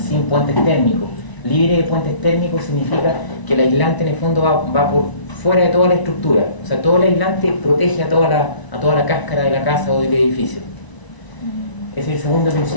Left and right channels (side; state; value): right; late; 1.0 ms